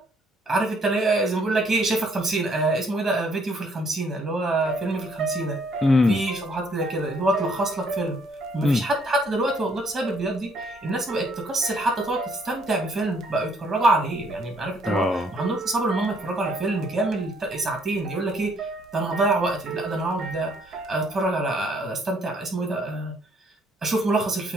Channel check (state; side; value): normal; both; correlation 0.66